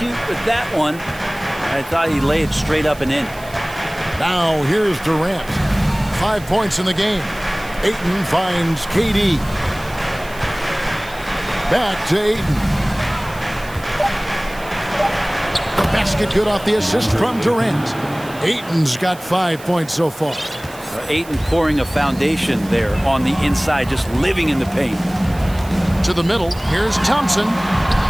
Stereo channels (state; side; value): noise; right; hiss, 20 dB below the sound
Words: with that one. I thought he laid it straight up and in. Now here's Durant. 5 points in the game. Ayton finds KD. Back to Ayton. The basket good off the assist from Durant. Ayton's got 5 points so far. Ayton pouring a foundation there on the inside, just living in the paint. To the middle, here's Thompson.